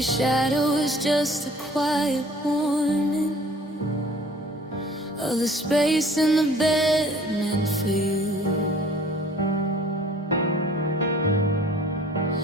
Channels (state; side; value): normal; both; correlation 0.51